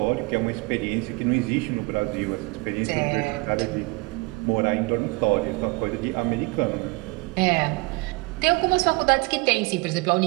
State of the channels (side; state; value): left; quieter; 26.6 dB